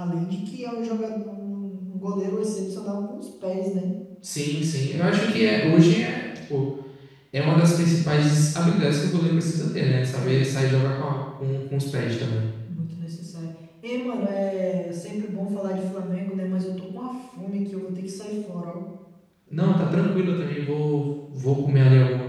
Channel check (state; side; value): identical; both; correlation 1.00